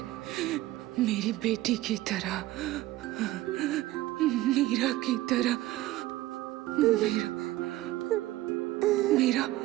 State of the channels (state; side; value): quieter; left; 16.7 dB